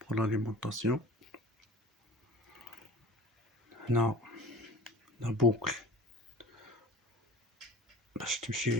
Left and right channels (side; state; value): both; normal; correlation 0.41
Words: بور لاليمونطاسيون. هنا لا بوكل باش